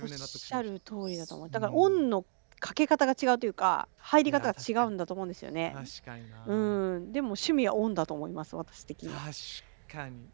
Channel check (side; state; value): left; silent; digital silence